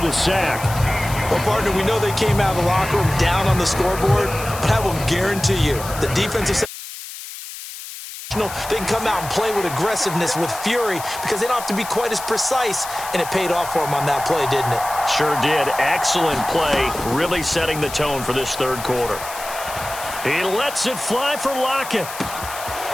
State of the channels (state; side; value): noise; left; hiss, 11 dB below the sound